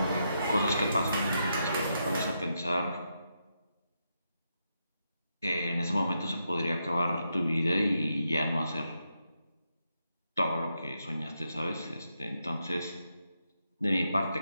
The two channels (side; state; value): both; inverted; correlation -0.83